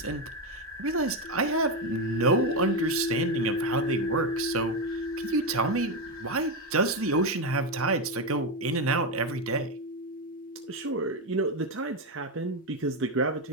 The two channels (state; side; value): normal; both; correlation 0.09